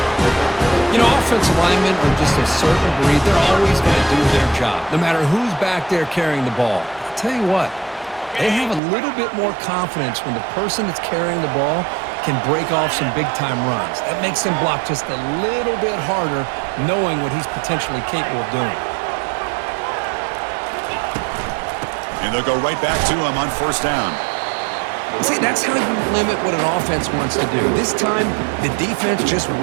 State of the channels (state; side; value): drops out; left; at 8.8 s